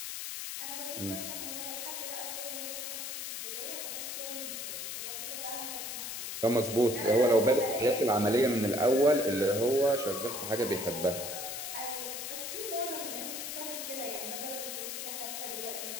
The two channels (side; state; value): left; noise; hiss, 5 dB below the sound